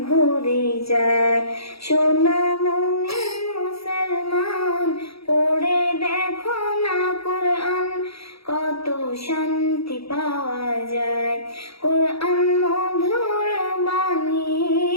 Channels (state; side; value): late; right; 0.76 ms